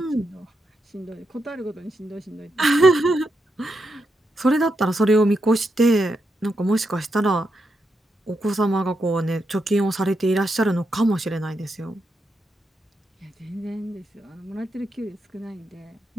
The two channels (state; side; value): normal; both; correlation 0.84